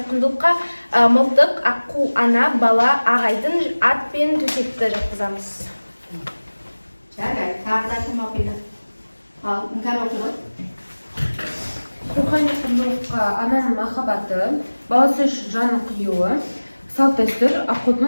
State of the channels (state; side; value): inverted; both; correlation -1.00